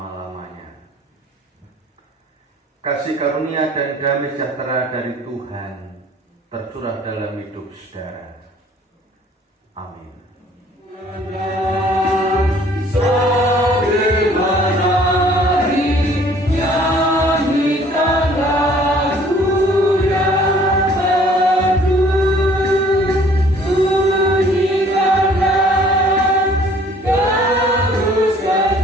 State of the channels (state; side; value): normal; both; correlation 0.56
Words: Kasih karunia dan damai sejahtera dari Tuhan tercurah dalam hidup saudara. Amin.